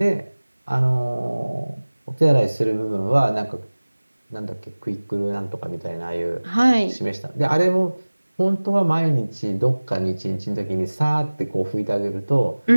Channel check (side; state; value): both; inverted; correlation -1.00